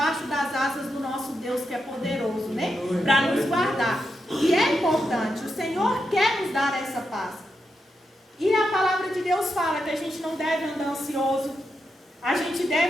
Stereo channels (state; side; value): normal; both; correlation 0.86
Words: das asas do nosso Deus, que é poderoso, né? Para nos guardar. E é importante, o Senhor quer nos dar essa paz. E a palavra de Deus fala que a gente não deve andar ansioso. A gente